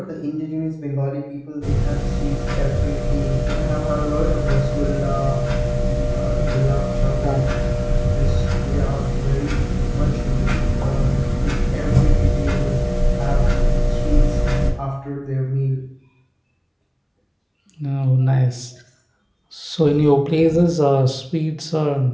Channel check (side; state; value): both; identical; correlation 1.00